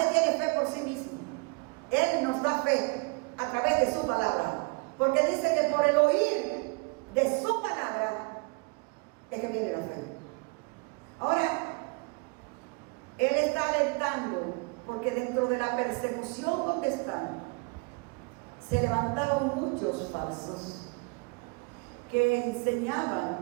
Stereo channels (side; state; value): left; quieter; 30.1 dB